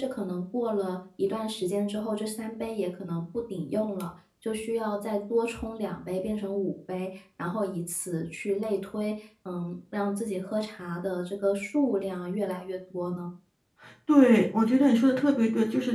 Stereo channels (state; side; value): identical; both; correlation 1.00